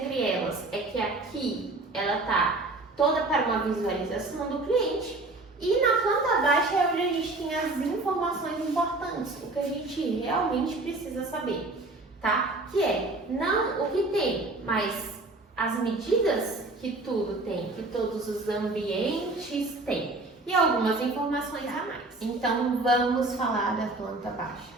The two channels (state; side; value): quieter; left; 3.0 dB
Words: elas é que aqui ela está toda para uma visualização do cliente e na planta baixa é onde a gente tem as informações importantes, o que a gente realmente precisa saber, tá? Que é não o que tem, mas as medidas que tudo tem, que todos os ambientes têm e algumas informações a mais. Então, vamos falar da planta baixa.